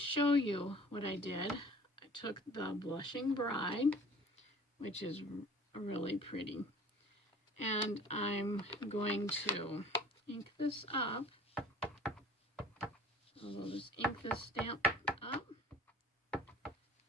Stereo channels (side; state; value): both; normal; correlation 0.47